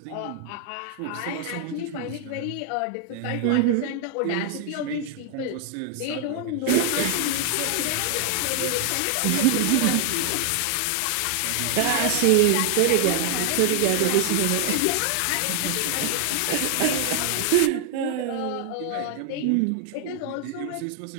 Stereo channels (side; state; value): both; different; correlation 0.00